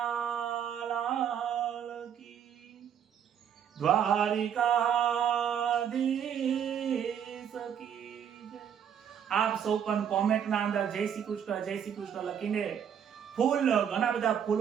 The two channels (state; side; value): quieter; left; 8.6 dB